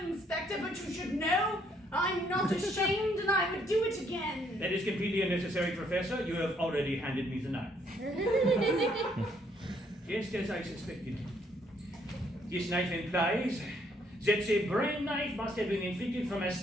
Inspector, but you should know I'm not ashamed and I would do it again. That is completely unnecessary, Professor. You have already handed me the knife. Just as I suspected. This knife implies that the brain knife must have been inflicted from a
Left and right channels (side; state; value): both; normal; correlation 0.69